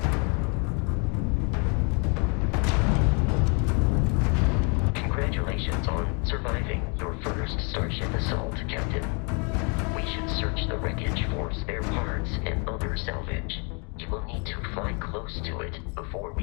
Congratulations on surviving your first Starship assault, Captain. We should search the wreckage for spare parts and other salvage. You will need to fly close to it before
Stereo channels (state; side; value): quieter; right; 35.5 dB